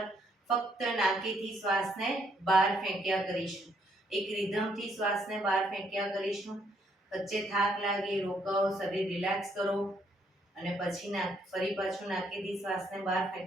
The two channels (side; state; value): both; normal; correlation 0.70